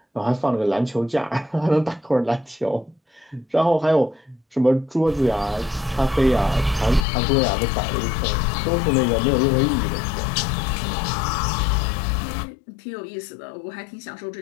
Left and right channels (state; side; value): drops out; right; at 7.1 s